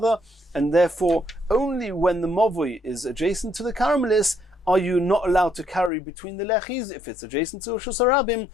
and therefore only when the mavui is adjacent to the caramelis are you not allowed to carry between the lechis. If it's adjacent to Rishus Harabim,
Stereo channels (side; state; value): right; drops out; at 5.9 s